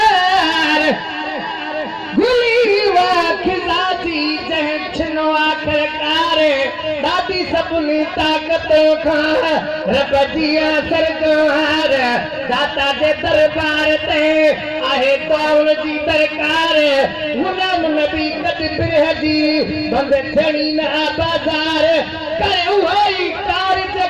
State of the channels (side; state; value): both; identical; correlation 1.00